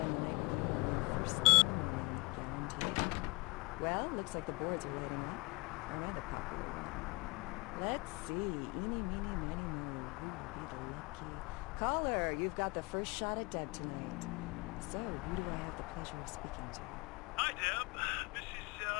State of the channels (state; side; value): quieter; right; 25.2 dB